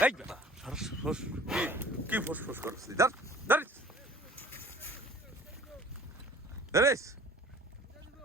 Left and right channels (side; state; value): both; normal; correlation 0.50